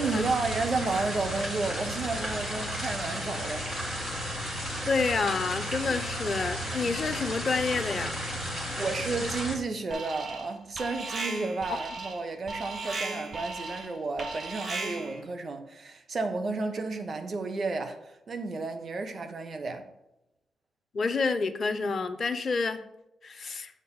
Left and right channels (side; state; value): both; normal; correlation 0.80